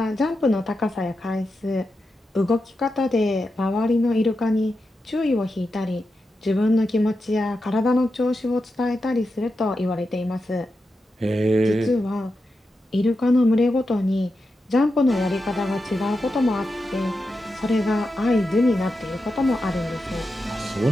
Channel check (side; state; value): both; normal; correlation 0.89